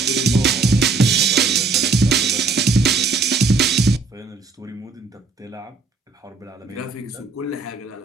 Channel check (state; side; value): quieter; left; 4.3 dB